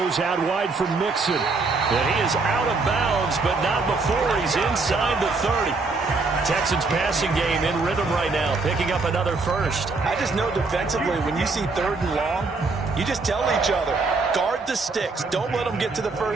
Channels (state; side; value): quieter; left; 3.9 dB